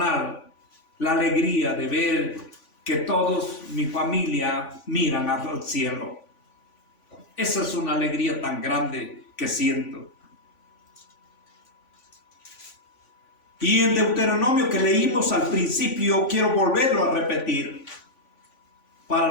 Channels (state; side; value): late; right; 3.5 ms